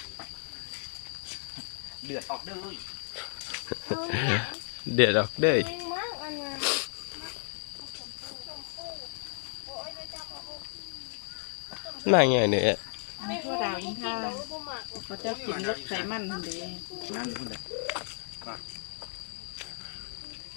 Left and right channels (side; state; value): right; silent; digital silence